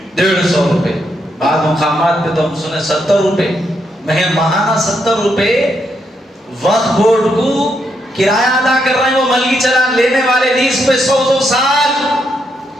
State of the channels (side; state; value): both; normal; correlation 0.79